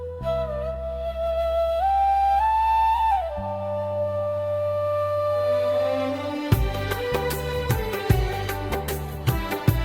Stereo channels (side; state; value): both; identical; correlation 1.00